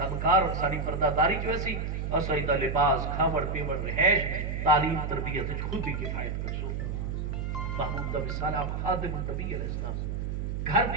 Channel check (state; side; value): noise; right; hum, 3 dB below the sound